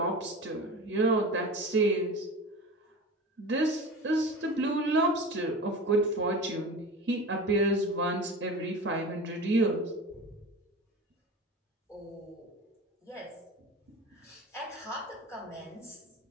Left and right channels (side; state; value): both; normal; correlation 0.32